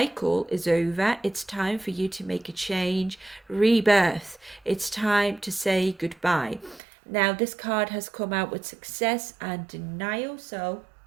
is over. It's time for you to make a change, rebirth. It's time to say goodbye. Now, this card has come out with success and denial. So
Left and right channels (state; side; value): drops out; left; at 6.8 s